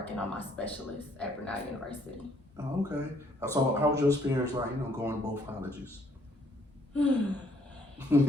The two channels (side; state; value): both; normal; correlation 0.66